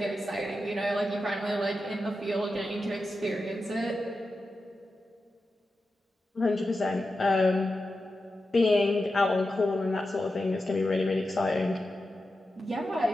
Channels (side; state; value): both; normal; correlation 0.91